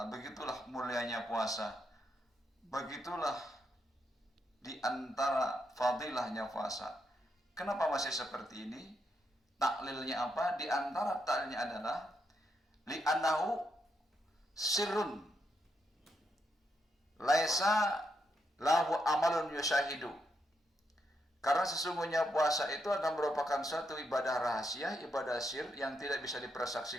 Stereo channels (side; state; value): both; normal; correlation 0.81